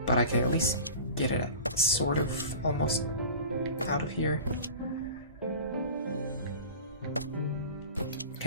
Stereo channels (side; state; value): both; inverted; correlation -0.37